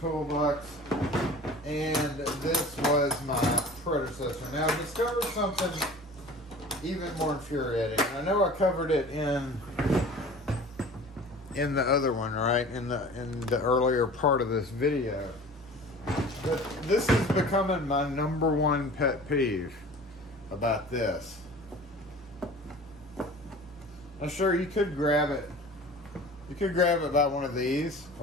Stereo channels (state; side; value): normal; both; correlation 0.41